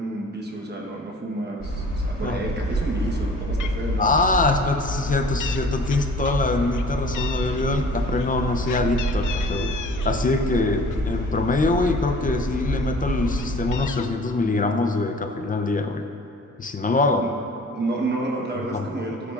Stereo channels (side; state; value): both; normal; correlation 0.48